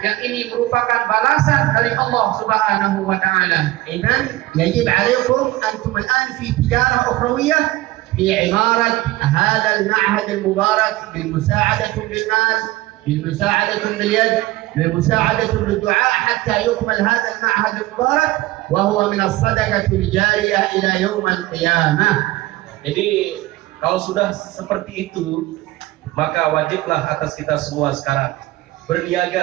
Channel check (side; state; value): left; quieter; 17.9 dB